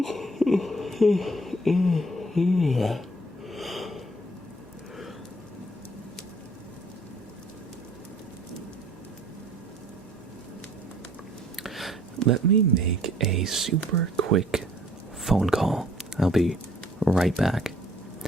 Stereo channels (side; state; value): both; normal; correlation 0.59